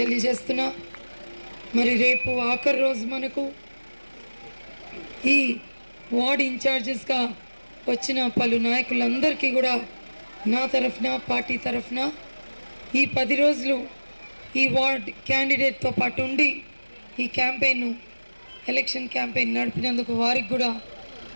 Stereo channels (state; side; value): inverted; both; correlation -1.00